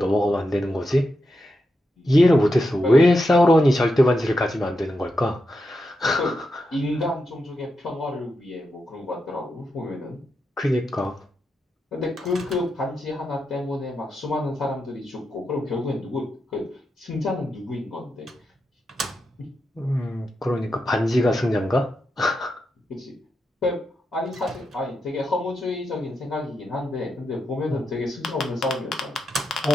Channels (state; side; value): normal; both; correlation 0.86